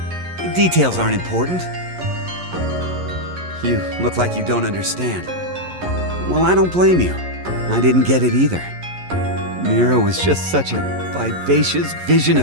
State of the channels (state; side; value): late; left; 11 ms